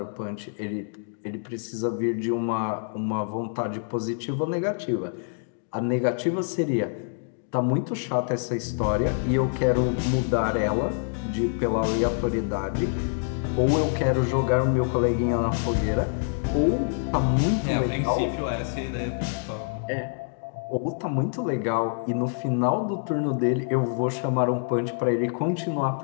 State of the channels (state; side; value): silent; right; digital silence